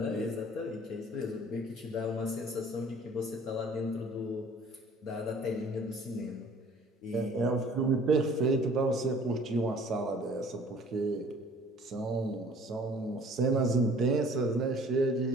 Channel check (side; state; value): both; normal; correlation 0.52